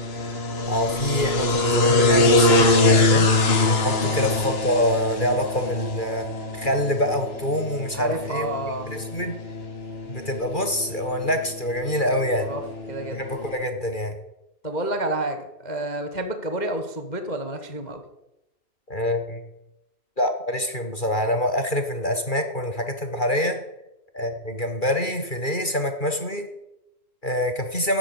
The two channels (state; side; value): late; right; 2.4 ms